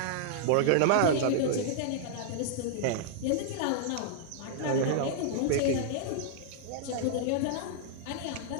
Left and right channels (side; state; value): both; different; correlation -0.01